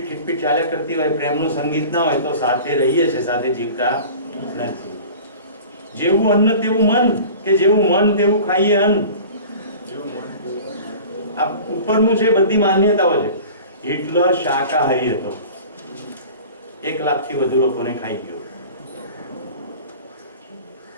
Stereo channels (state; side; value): inverted; both; correlation -0.40